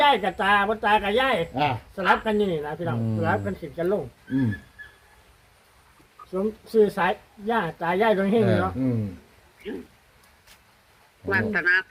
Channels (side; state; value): both; identical; correlation 1.00